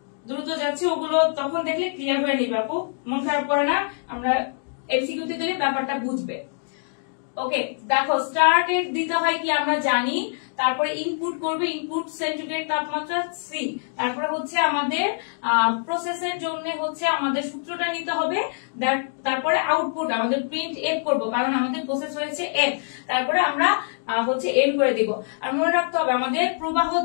দ্রুত যাচ্ছি, ওগুলো তখন দেখলে ক্লিয়ার হয়ে নিবে আপু, মন খারাপ করে না, আমরা এমসিকিউতে দিলে ব্যাপারটা বুঝবে। ওকে, দেখো স্টার্ট এর দিতে হয় কি আমরা জানি, তারপরে ইনপুট করবে, ইনপুট সেন্টিগ্রেড তাপমাত্রা সি, তারপরে হচ্ছে আমাদের প্রসেসের জন্য হচ্ছে আমাদের সূত্রটা নিতে হবে, তারপরে আউটপুট আমাদের প্রিন্ট এফ করব, কারণ আমাদের প্রসেস হয়েছে এফ, তারপরে আমরা হচ্ছে এম করে দিব। আর মনে রাখতে হবে আমাদের প্রবাহ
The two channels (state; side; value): silent; right; digital silence